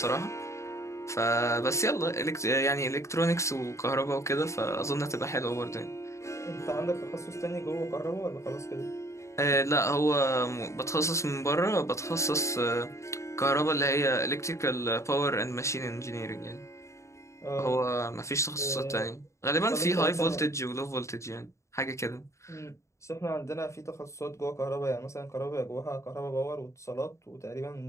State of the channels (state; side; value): late; right; 0.14 ms